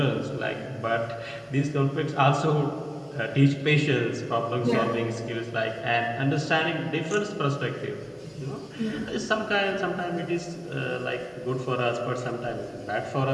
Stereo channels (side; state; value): both; identical; correlation 1.00